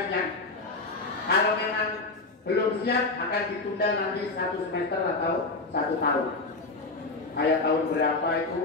Kalau memang belum siap, akan ditunda nanti 1 semester atau 1 tahun. Kayak tahun berapa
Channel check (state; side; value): quieter; right; 3.4 dB